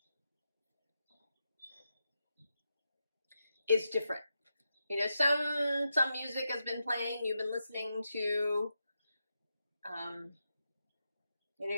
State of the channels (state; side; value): inverted; both; correlation -0.87